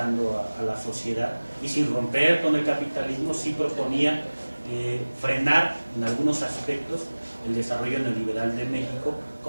a la sociedad, y sin romper con el capitalismo sí proponía frenar en algunos aspectos el desarrollo neoliberal de México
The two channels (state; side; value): inverted; both; correlation -1.00